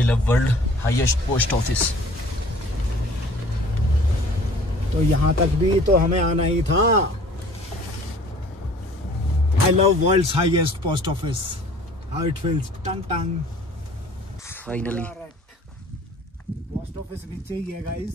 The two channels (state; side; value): normal; both; correlation 0.50